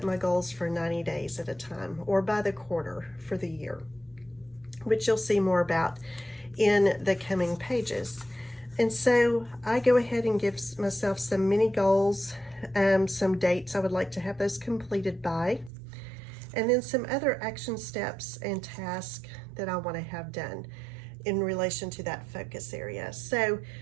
my goals for 90 days at a time, or by the quarter for the year, which you'll see more about in the coming pages. And so I go ahead and give myself some mini goals, some dates I would like to have those completed by, and then some other action steps and tasks that I want to have done in relation to that focus area. So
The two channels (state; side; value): drops out; left; at 15.7 s